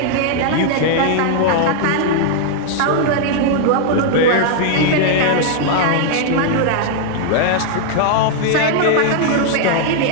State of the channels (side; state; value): both; different; correlation -0.01